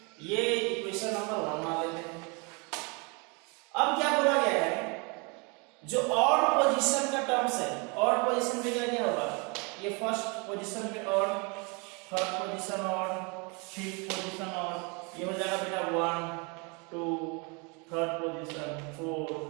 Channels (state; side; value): quieter; left; 31.6 dB